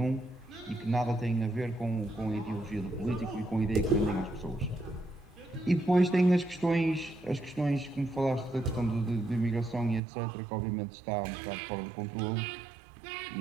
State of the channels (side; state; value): left; drops out; at 10.0 s